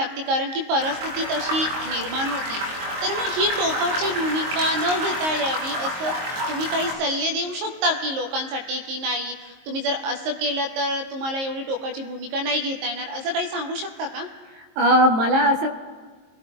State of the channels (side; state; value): left; late; 22 ms